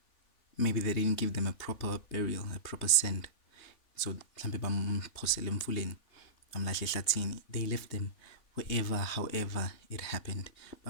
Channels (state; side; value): late; right; 3.5 ms